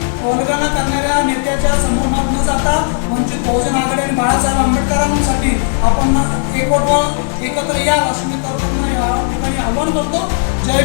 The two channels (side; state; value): right; silent; 70 dB below the other